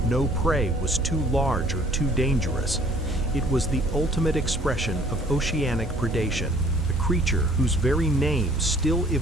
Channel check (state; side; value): normal; both; correlation 0.56